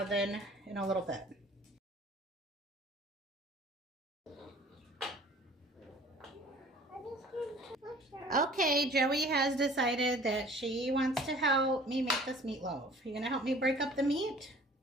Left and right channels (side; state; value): both; normal; correlation 0.50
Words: in a little bit. Okay, Joey has decided that she wants to help me make this meatloaf. You gonna help me break up the meat?